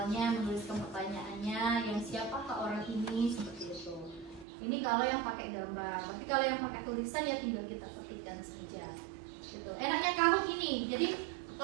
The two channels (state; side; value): drops out; left; at 4.5 s